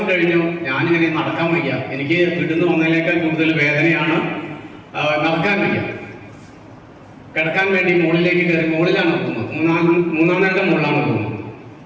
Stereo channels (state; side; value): identical; both; correlation 1.00